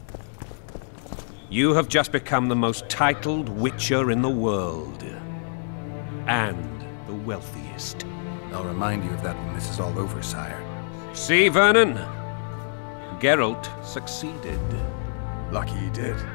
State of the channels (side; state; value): right; silent; digital silence